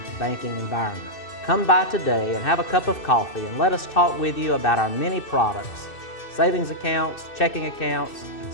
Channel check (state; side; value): late; right; 2.6 ms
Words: banking environment. Come by today and have a cup of coffee and let us talk with you about our many products, savings accounts, checking accounts,